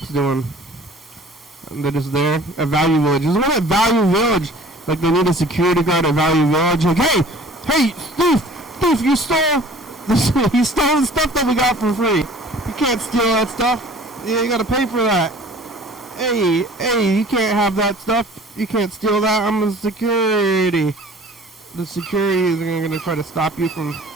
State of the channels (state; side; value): normal; both; correlation 0.48